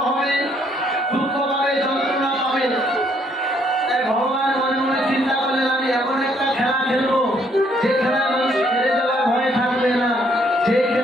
হবে, দুঃখ পাবে, যন্ত্রণা পাবে। তাই ভগবান মনে মনে চিন্তা করলেন আমি এমন একটা খেলা খেলবো যে খেলায় মানুষ হেরে যাওয়ার ভয় থাকবে না, যে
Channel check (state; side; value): normal; both; correlation 0.68